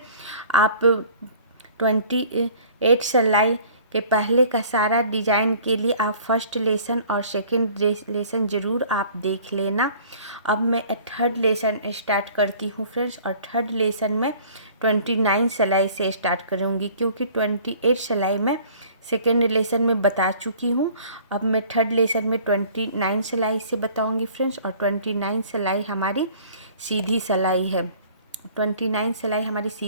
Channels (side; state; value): both; inverted; correlation -0.51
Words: आप 28 सिलाई के पहले का सारा डिज़ाइन के लिए आप फर्स्ट लेसन और सेकंड लेसन ज़रूर आप देख लेना। अब मैं थर्ड लेसन स्टार्ट करती हूँ फ्रेंड्स, और थर्ड लेसन में 29 सिलाई से स्टार्ट करूँगी क्योंकि 28 सिलाई में सेकेंड लेसन में बता चुकी हूँ। अब मैं थर्ड लेसन में 29 सिलाई से बताऊँगी फ्रेंड्स, और 29 सिलाई हमारी सीधी सिलाई है। 29 सिलाई हमारी